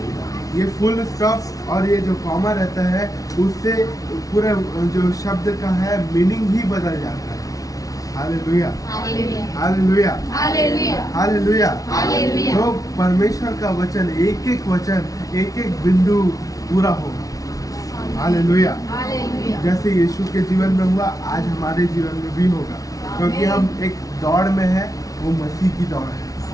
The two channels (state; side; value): late; right; 0.17 ms